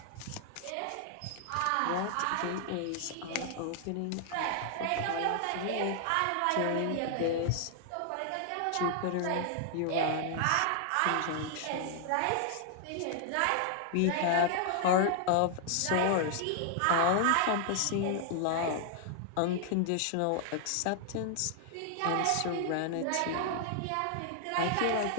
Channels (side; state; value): both; different; correlation 0.00